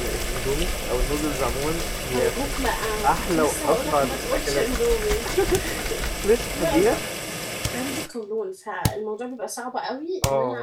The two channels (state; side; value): identical; both; correlation 1.00